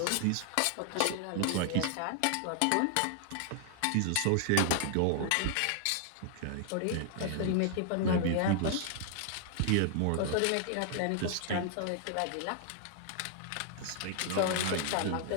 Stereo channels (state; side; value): different; both; correlation 0.00